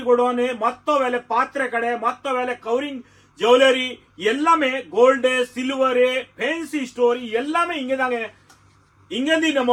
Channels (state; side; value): identical; both; correlation 1.00